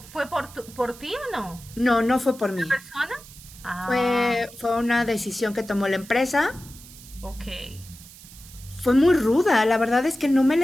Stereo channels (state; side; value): noise; right; hiss, 19 dB below the sound